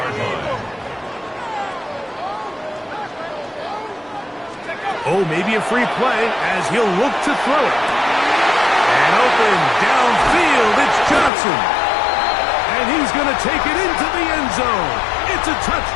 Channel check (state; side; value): drops out; right; at 11.3 s